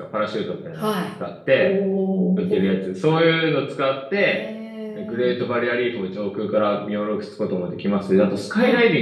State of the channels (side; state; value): both; identical; correlation 1.00